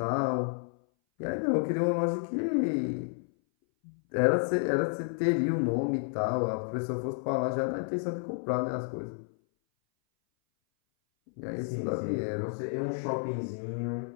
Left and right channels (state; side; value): silent; right; 57 dB below the other